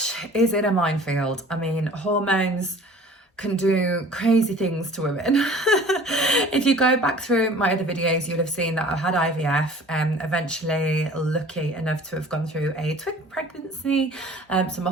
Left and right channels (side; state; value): both; normal; correlation 0.47